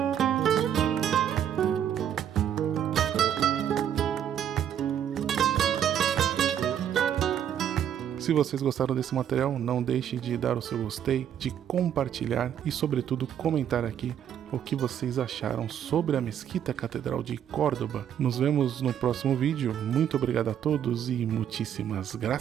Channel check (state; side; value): quieter; left; 9.6 dB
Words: Se vocês gostaram desse material, não deixe de dar o seu gostei, de compartilhar e, sobretudo, comentar aqui o que vocês acharam sobre a Mesquita Catedral de Córdoba. Nos vemos no próximo vídeo. Muito obrigado a todos e muitíssimas